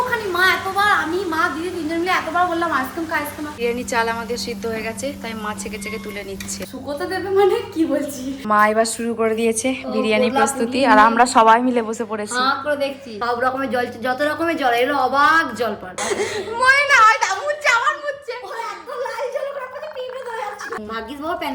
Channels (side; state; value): both; identical; correlation 1.00